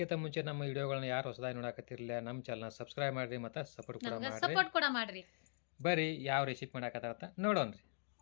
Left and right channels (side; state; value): right; silent; digital silence